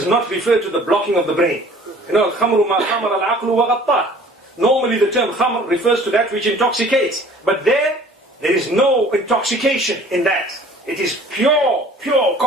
not refer to the blocking of the brain. You know, al-khamru ma khamar al-aqlu wa ghattah. Normally the term khamr refers to that which intoxicates. But there is no intoxication in that. It is pure,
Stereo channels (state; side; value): normal; both; correlation 0.51